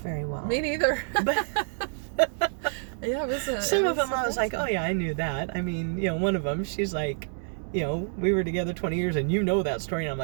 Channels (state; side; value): silent; left; digital silence